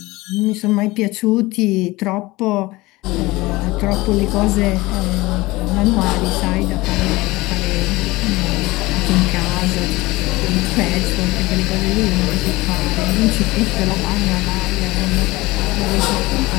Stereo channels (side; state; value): right; quieter; 20.6 dB